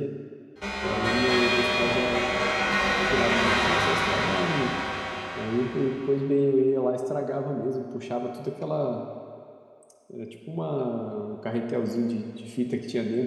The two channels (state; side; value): identical; both; correlation 1.00